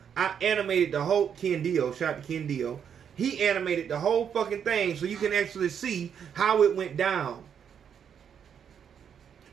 I animated the whole, Ken Dio, shout out to Ken Dio. He animated the whole fucking thing so you can actually see how it went down.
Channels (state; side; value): quieter; left; 7.9 dB